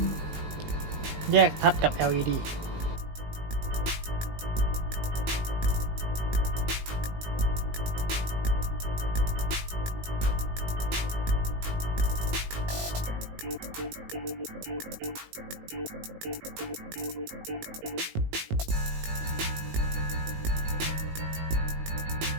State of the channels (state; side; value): late; left; 19 ms